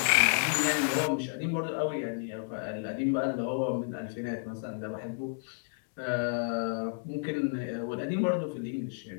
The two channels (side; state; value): right; silent; digital silence